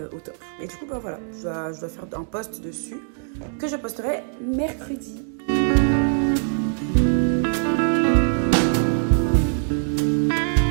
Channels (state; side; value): silent; left; digital silence